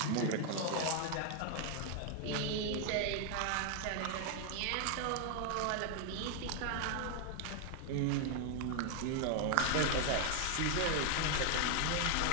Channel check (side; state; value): both; different; correlation 0.00